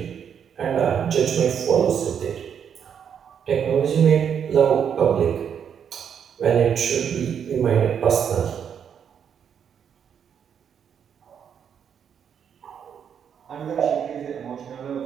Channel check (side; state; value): left; quieter; 8.0 dB